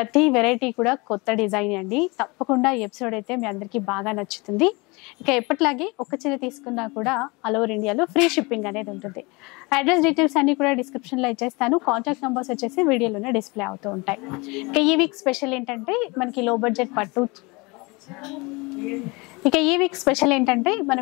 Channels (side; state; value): right; quieter; 26.4 dB